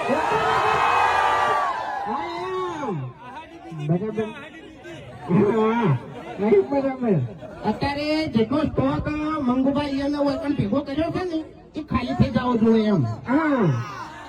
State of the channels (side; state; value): both; identical; correlation 1.00